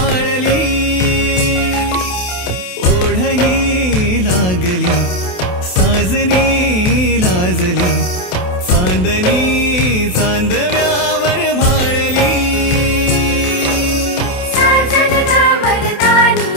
ओढही लागली साजनी लाजली चांदणी चांदव्यावर भाळली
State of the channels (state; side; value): late; right; 28 ms